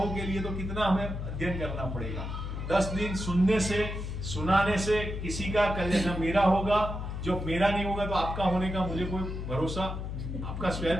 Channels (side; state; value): left; noise; hum, 5 dB below the sound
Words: के लिए तो कितना हमें अध्ययन करना पड़ेगा। 10 दिन सुनने से, सुनाने से किसी का कल्याण मेरा होगा, जो मेरा नहीं होगा तो आपका होने का मुझे कोई भरोसा, आपका